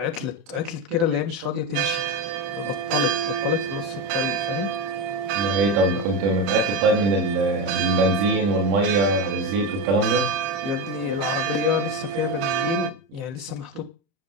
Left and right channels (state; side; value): late; left; 30 ms